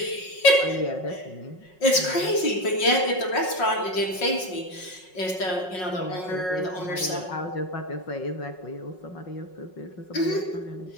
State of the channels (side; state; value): right; late; 5.4 ms